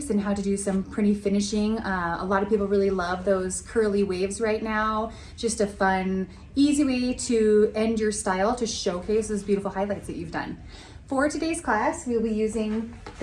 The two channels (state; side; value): identical; both; correlation 1.00